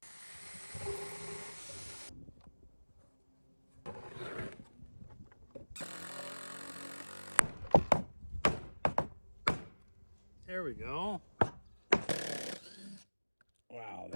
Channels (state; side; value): inverted; both; correlation -1.00